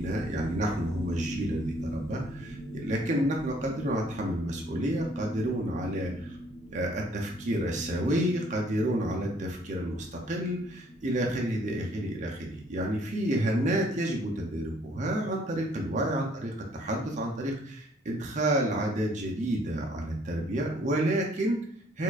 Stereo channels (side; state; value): both; normal; correlation 0.62